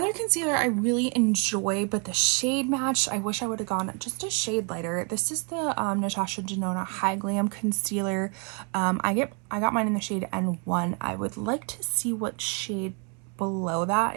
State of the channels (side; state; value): left; quieter; 35.6 dB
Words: concealer I really enjoy, but the shade match, I wish I would have gone just a shade lighter. This is the Natasha Denona High Glam Concealer. I got mine in the shade N1. I would like to see what shade below that